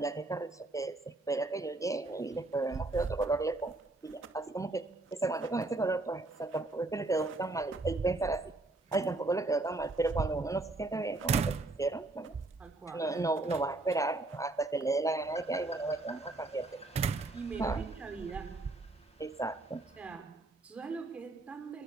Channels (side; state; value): left; quieter; 3.1 dB